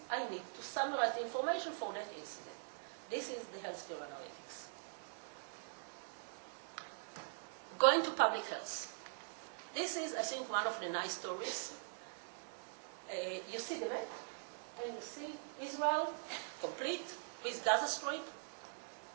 I need to summarize the information for that incident. This is the healthcare analytics. Going to public health. This is, I think, one of the nice stories. You see the map, and you see Israel complete with Gaza Strip,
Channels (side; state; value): left; silent; digital silence